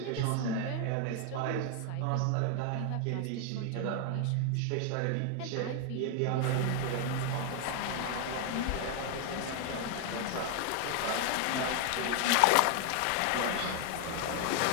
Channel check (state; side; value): different; both; correlation 0.00